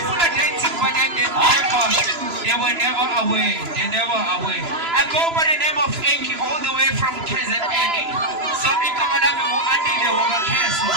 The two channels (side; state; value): left; late; 3.0 ms